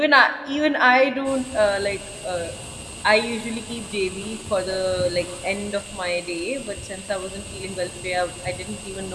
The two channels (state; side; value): identical; both; correlation 1.00